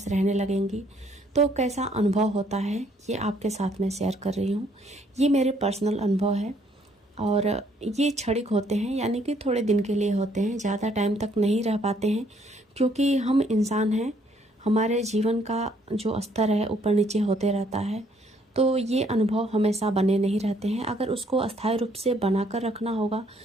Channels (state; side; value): normal; both; correlation 0.66